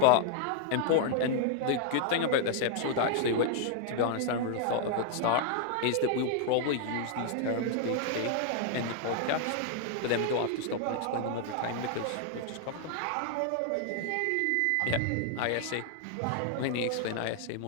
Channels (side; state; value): both; different; correlation 0.00